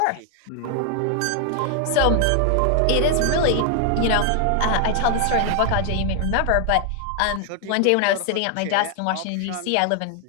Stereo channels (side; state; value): both; different; correlation 0.01